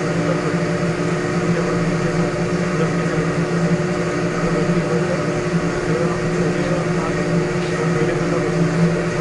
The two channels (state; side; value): identical; both; correlation 1.00